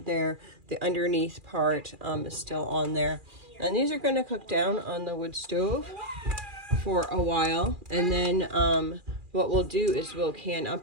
the underneath part is still on there. And these are going to cook down on the wood stove for a while. And then what we'll do is we'll can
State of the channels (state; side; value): late; left; 2.4 ms